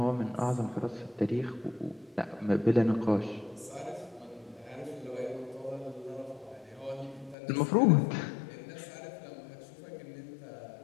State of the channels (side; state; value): right; drops out; at 7.4 s